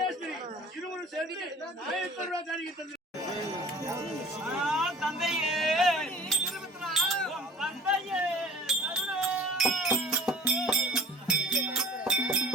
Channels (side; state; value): both; normal; correlation 0.45